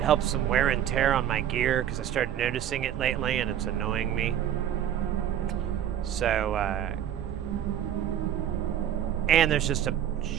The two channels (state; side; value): quieter; left; 10.3 dB